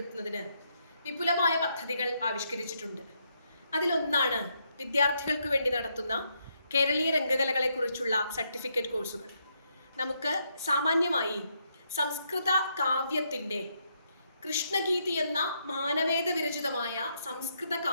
വിപുലമായ പദ്ധതികൾ ആവിഷ്കരിച്ചിട്ടുണ്ട്. അതിലൊന്നാണ് വിദ്യാർത്ഥികൾക്ക് വേണ്ടി നടത്തുന്ന കേരളീയ രംഗകലകളെക്കുറിച്ചുള്ള സർട്ടിഫിക്കറ്റ് കോഴ്സുകൾ. നമുക്ക് സാമാന്യമായി സംസ്കൃത കാവ്യത്തിൻ്റെ കൃഷ്ണഗീതി എന്ന മാനവേദ വിരചിതമായ സംസ്കൃത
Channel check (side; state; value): both; inverted; correlation -0.77